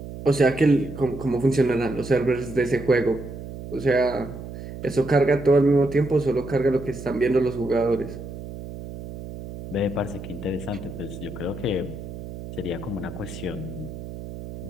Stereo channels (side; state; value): right; noise; hum, 11 dB below the sound